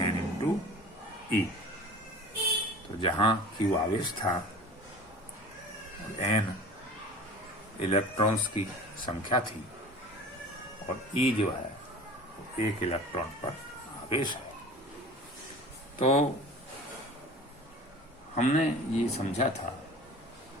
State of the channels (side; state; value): both; normal; correlation 0.40